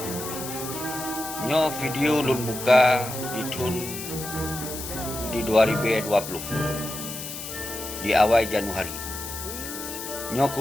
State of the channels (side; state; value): left; noise; hiss, 8 dB below the sound